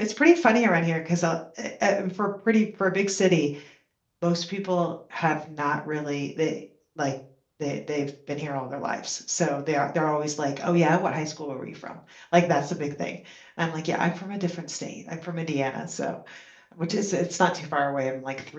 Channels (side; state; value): both; identical; correlation 1.00